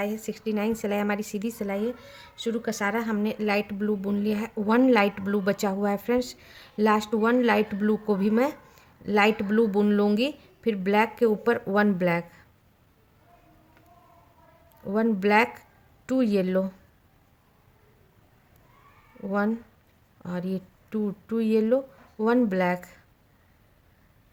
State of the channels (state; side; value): identical; both; correlation 1.00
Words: है। 69 सिलाई हमारी सीधी सिलाई है। शुरू का सारा हमने लाइट ब्लू बुन लिया है। 1 लाइट ब्लू बचा हुआ है फ्रेंड्स। लास्ट 1 लाइट ब्लू को भी मैं लाइट ब्लू बुन लूँगी। फिर ब्लैक के ऊपर 1 ब्लैक, 1 ब्लैक, 2 येलो, 1 और ये 2 येलो, 1 ब्लैक,